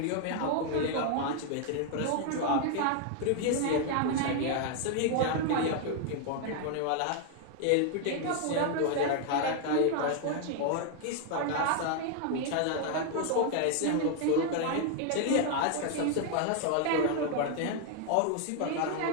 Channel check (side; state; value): both; different; correlation 0.00